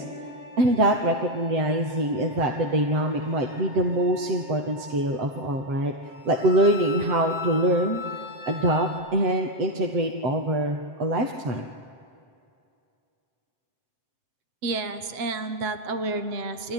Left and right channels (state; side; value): late; left; 7.7 ms